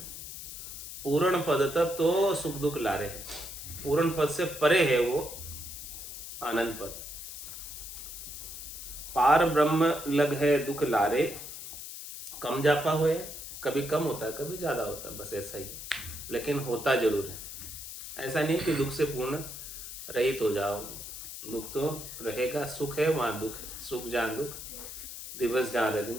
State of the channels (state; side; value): noise; left; hiss, 10 dB below the sound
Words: पूर्ण पद तक तो सुख दुख लारे है। पूर्ण पद से परे है वो आनंद पद। पार ब्रह्म लग है दुख लारे, कम जापा हुए। कभी कम होता है, कभी ज्यादा होता है, बस ऐसा ही। लेकिन होता जरूर है। ऐसा नहीं कि दुख से पूर्ण रहित हो जाओगे, दुख तो रहेगा। सुख है वहां दुख, सुख जहाँ दुख, दिवस जहाँ